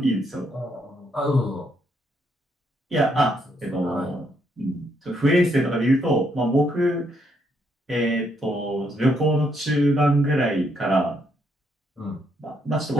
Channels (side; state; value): both; normal; correlation 0.74